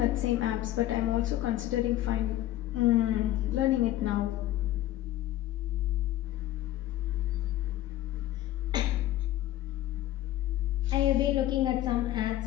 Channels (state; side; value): quieter; right; 14.3 dB